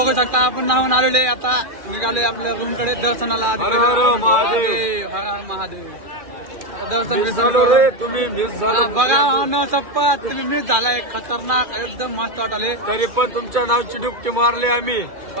शकता आपण नाहून आलेले आता निघाले आपल्या रूम कडे दर्शनाला महादेव हर हर महादेव दर्शन बघा न शपथ तुम्ही मिस झालाय खतरनाक एकदम मस्त वाटले तरी पण तुमच्या नावची डुबकी मारली आम्ही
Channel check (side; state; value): left; late; 2.4 ms